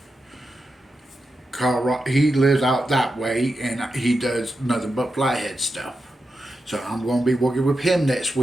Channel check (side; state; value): both; normal; correlation 0.88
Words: He lives out that way, and he does nothing but flathead stuff. So I'm going to be working with him next